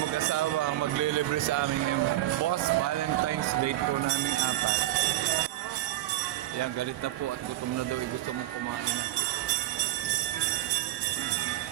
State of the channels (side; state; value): left; quieter; 15.2 dB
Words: ang maglilibre sa aming boss Valentine's Day po namin apat. Yan, galit na po at gutom na daw, gusto mong kumain.